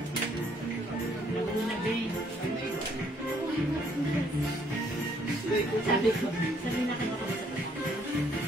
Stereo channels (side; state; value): both; normal; correlation 0.66